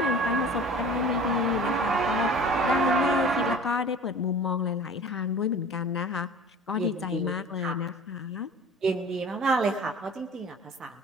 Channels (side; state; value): both; normal; correlation 0.42